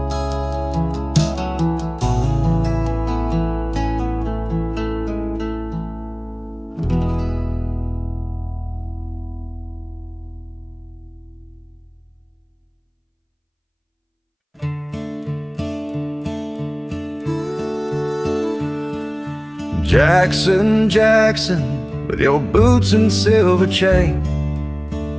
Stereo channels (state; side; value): identical; both; correlation 1.00